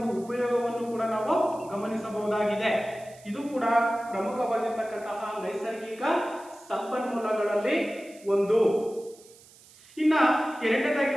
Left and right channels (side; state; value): right; noise; hiss, 24 dB below the sound